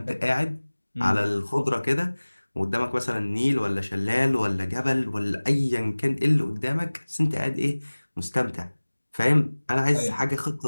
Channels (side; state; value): both; inverted; correlation -1.00